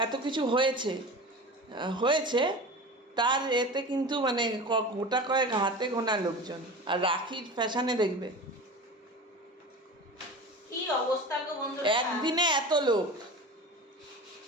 এত কিছু হয়েছে তার এতে কিন্তু মানে গোটা কয়েক হাতে গোনা লোকজন। আর রাখির ফ্যাশনে দেখবে কি অবস্থা গো বন্ধুরা, একদিনে এত লোক।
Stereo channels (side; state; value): both; normal; correlation 0.33